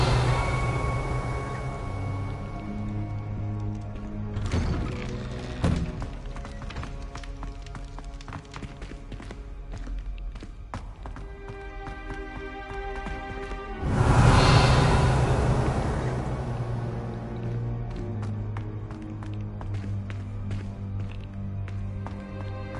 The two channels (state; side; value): identical; both; correlation 1.00